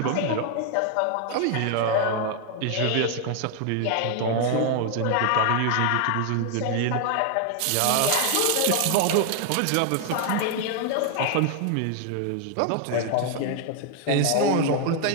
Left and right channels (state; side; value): different; both; correlation 0.00